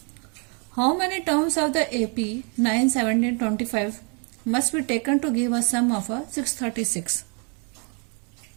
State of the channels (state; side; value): quieter; left; 37.5 dB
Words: How many terms of the AP 9, 17, 25 must be taken to give a sum of a 636?